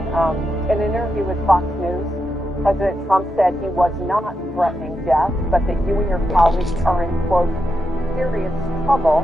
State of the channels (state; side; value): normal; both; correlation 0.85